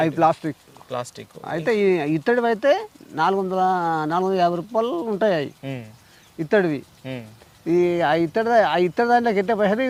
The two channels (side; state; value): both; identical; correlation 1.00